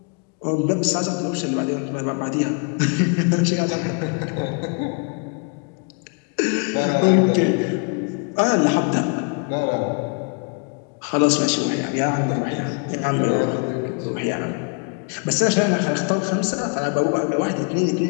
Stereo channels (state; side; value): quieter; right; 36.6 dB